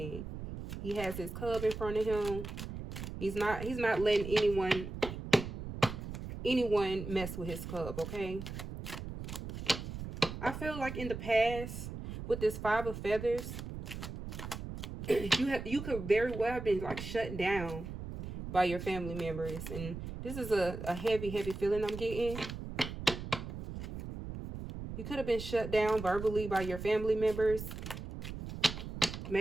He has his cub in front of him. He's not letting anyone mess with his cub, okay? I feel like in the past with this 5 of Feathers, you could very well have been like shut down by your family members, and this is a heavy feeling I'm getting. You could have been shut down verbally by your family members.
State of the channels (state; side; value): noise; right; rumble, 8 dB below the sound